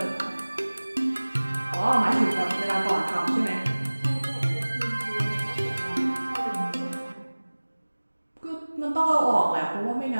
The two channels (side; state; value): both; inverted; correlation -1.00